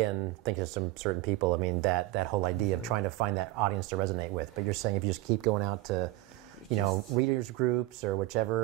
thinking of some certain people, I mean, that whole idea of trying to find that audience to resonate with. But you're saying if you just keep going out to, readers groups or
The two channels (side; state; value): left; quieter; 18.2 dB